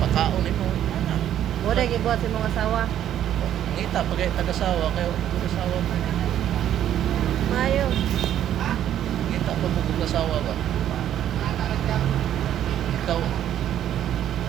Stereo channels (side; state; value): left; quieter; 11.0 dB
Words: nimo. Ana. Muna gibuhat sa mga asawa. Ngita pagay tagasawa kayo tagasawa mo. Mayo. Ngita pa mo tagasawa ba. Ikaw